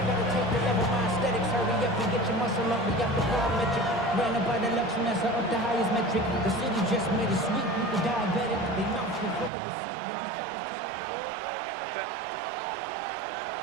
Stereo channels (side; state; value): left; drops out; at 9.5 s